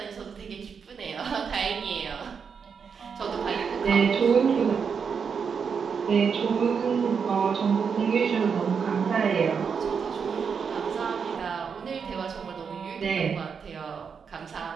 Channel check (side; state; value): left; quieter; 6.3 dB